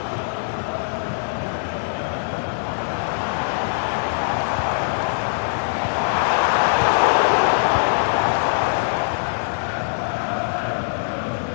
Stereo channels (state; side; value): silent; right; digital silence